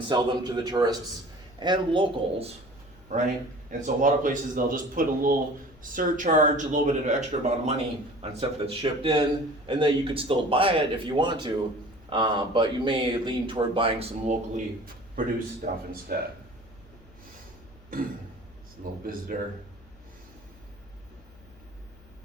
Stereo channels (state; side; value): noise; left; hum, 24 dB below the sound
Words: sell them to the tourists and locals, right? And so a lot of places, they'll just put a little surcharge, a little bit of extra amount of money on stuff that's shipped in, and then you could still buy it if you want to, but you may lean toward buying some locally produced stuff instead. It's a little visitor.